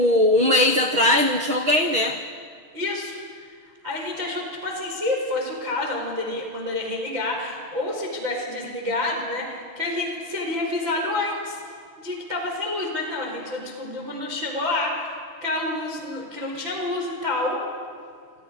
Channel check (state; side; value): late; left; 6.4 ms